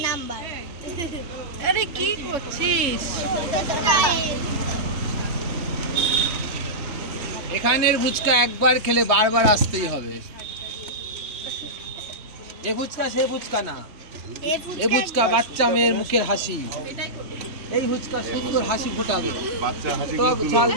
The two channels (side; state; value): left; late; 3.1 ms